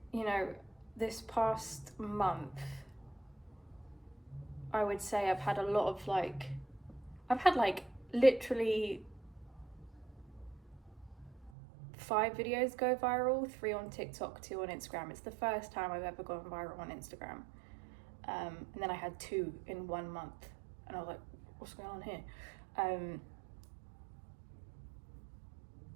You know, this past month, I would say I've had literally 5 videos go viral, 3 on TikTok, 2 on Instagram. It's the first time I've ever gone viral on Instagram. And then I had 2 in 1 month, and I was like, what's going on here?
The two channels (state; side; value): drops out; left; at 11.5 s